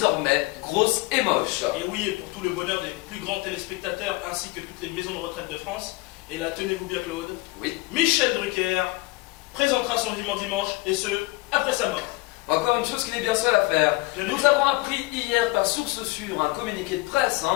Grosse et moche. Et oui, et pour tout le bonheur des plus grands téléspectateurs ainsi que toutes les maisons de retraite de France, et là tenez-vous bien Claude, Oui. Michel Drucker présentera son vivant dimanche, et ce, après sa mort. Encore une chose qu'il est bien seul à faire. Je l'ai Nous vu. avons appris hier par source sûre, un communiqué de presse,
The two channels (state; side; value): quieter; right; 22.4 dB